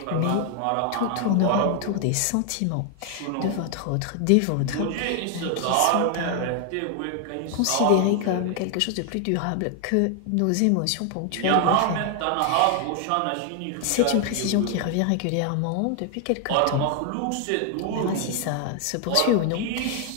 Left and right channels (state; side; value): different; both; correlation 0.00